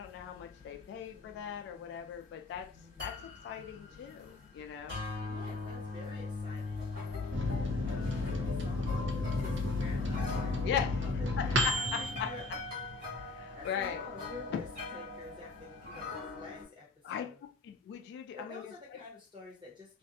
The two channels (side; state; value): right; quieter; 3.3 dB